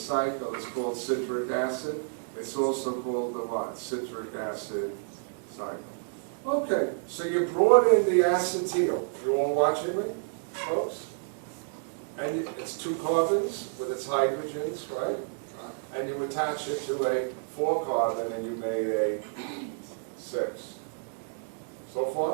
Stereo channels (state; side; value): silent; left; digital silence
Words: is called citric acid, it's also called the what? Citric acid cycle. Okay, so you brought in the acetyl. You all watching me, folks? And it's 2 carbons with its hydrogens, right? And you attach it to a 4-carbon and you made a 6. So